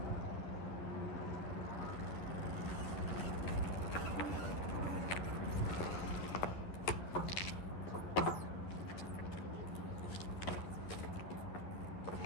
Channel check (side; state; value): right; late; 11 ms